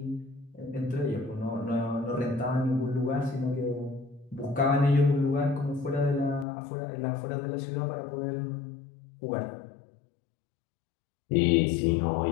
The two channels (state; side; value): drops out; right; at 6.5 s